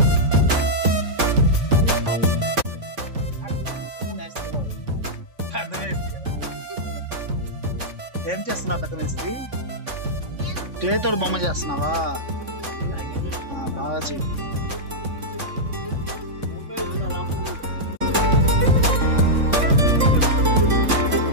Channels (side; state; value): left; late; 3.5 ms